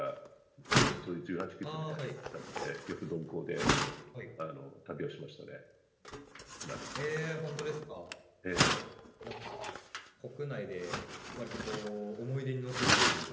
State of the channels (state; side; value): identical; both; correlation 1.00